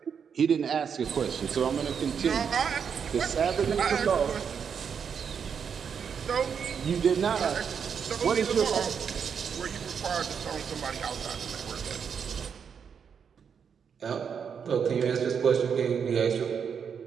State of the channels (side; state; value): left; quieter; 7.0 dB